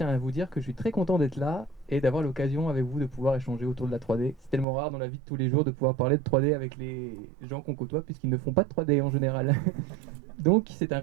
à vous dire que je suis très content d'être là et d'avoir l'occasion avec vous de pouvoir échanger autour de la 3D. C'est tellement rare dans la vie de tous les jours de pouvoir parler de 3D avec les gens qu'on côtoie puisqu'ils ne font pas de 3D en général. Donc, c'est un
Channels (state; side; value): drops out; left; at 4.7 s